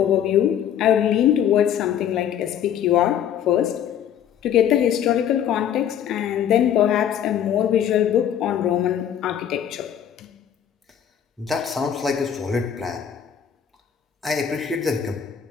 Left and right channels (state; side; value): quieter; right; 9.4 dB